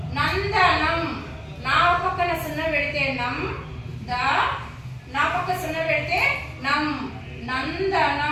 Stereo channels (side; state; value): both; identical; correlation 1.00